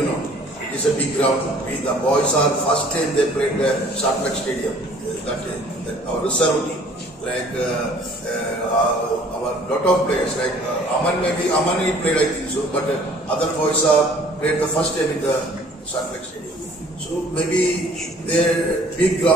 it's a big ground. The boys are first time they played the Sharplek Stadium. That our reserve team, like our lot of players, like Aman he played, I think so, but other boys are played the first time in the Sharplek Stadium. So maybe they're big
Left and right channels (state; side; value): normal; both; correlation 0.54